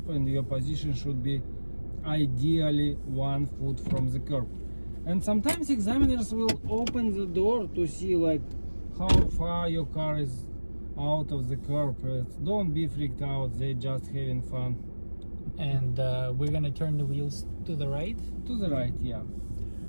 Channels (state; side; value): inverted; both; correlation -1.00